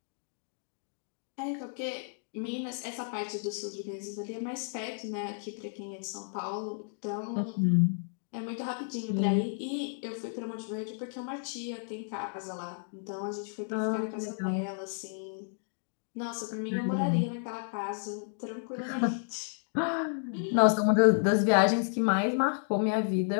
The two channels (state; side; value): silent; right; digital silence